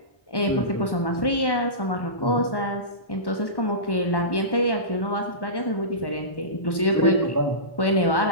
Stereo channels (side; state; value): right; late; 1.1 ms